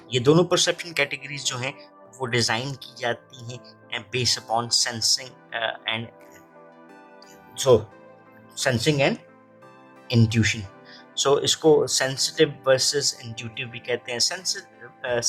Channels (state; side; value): identical; both; correlation 1.00